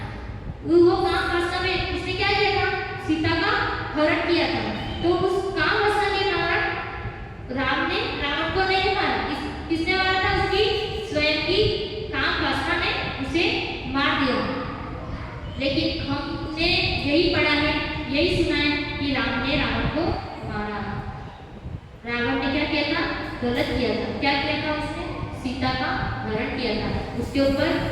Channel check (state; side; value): identical; both; correlation 1.00